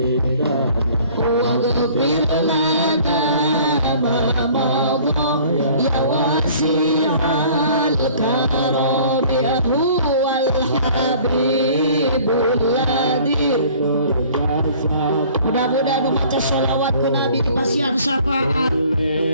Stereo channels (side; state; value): both; inverted; correlation -0.51